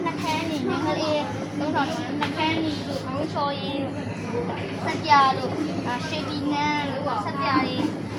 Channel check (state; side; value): identical; both; correlation 1.00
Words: နှခမ်းနေငယ်လေးသုံးဆောင်နှခမ်းနေလို့ဘုံချော်ရင်စက်ပြလို့ရှေ့ဒီနန်းလို့စက်ပြလေး